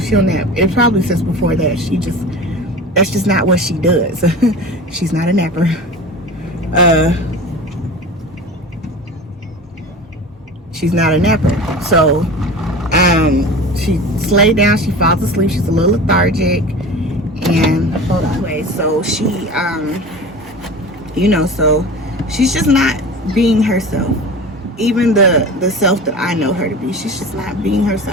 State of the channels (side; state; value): both; normal; correlation 0.35